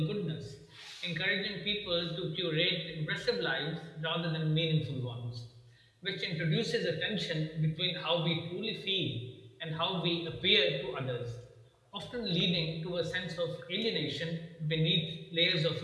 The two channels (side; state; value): both; identical; correlation 1.00